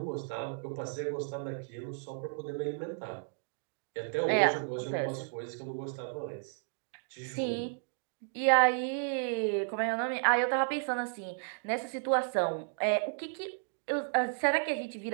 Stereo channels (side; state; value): left; silent; digital silence